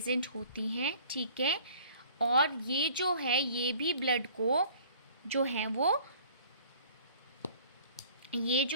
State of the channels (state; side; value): inverted; both; correlation -0.51